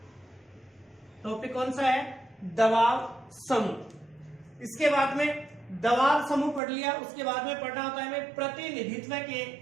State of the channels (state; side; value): drops out; left; at 6.6 s